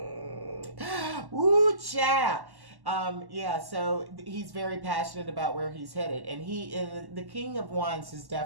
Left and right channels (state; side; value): late; left; 1.1 ms